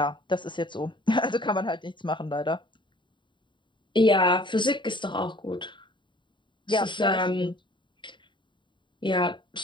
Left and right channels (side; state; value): right; late; 0.23 ms